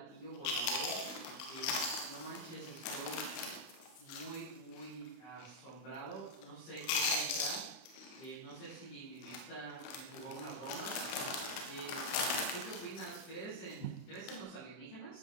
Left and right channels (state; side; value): late; right; 32 ms